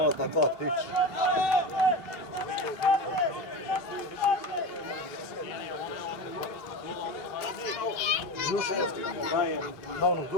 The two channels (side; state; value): right; late; 2.8 ms